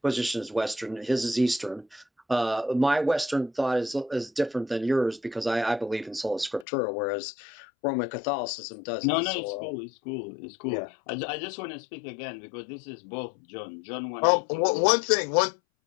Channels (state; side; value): drops out; right; at 6.7 s